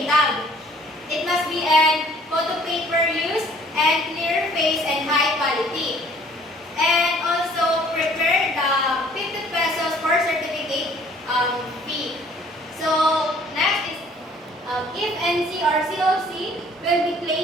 tag. It must be an photo paper use and clear face and high quality. And also prepare the 50 pesos for certificate fee. So next is if NC or COC will be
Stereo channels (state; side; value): normal; both; correlation 0.56